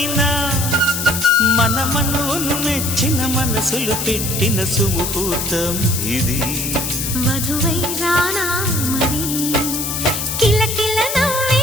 మన మనువును మెచ్చిన మనసులు పెట్టిన సుముహూర్తం ఇది వధువై రానా మరి కిలకిల నవ్వే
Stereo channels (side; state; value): left; noise; hiss, 3 dB below the sound